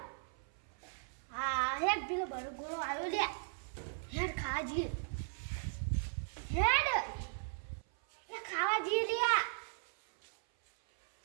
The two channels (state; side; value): silent; left; 53 dB below the other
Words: હા હેડ પેલો બરો ગોળો આવ્યો લે, હેડ ખાવા જઈએ, હેડ લે ખાવા જઈએ લે.